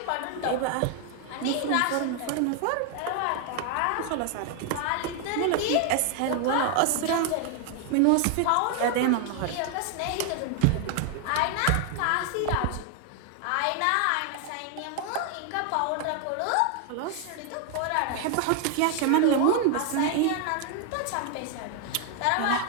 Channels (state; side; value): different; both; correlation 0.00